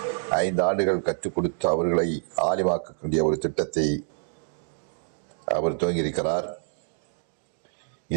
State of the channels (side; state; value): left; silent; 59 dB below the other